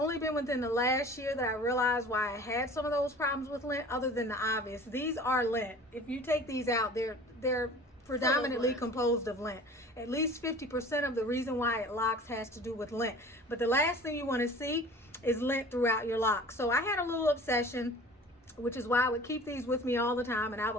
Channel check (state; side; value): normal; both; correlation 0.43